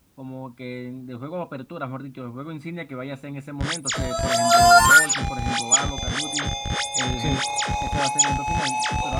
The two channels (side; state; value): both; identical; correlation 1.00